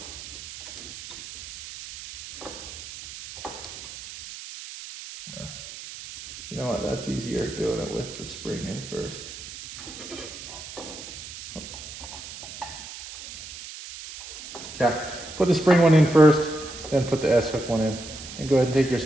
You know what, that's easier doing it with the spring in first. Okay, put the spring one in first, then put the S-hook one in. And go ahead and take your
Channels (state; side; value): noise; right; hiss, 12 dB below the sound